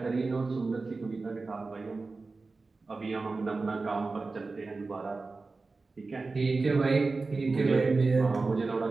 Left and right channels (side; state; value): left; quieter; 3.8 dB